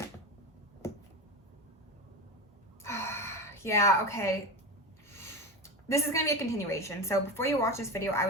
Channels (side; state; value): both; normal; correlation 0.22